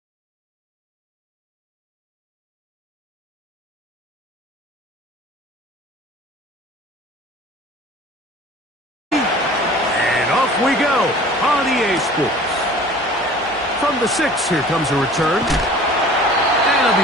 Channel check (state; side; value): normal; both; correlation 0.46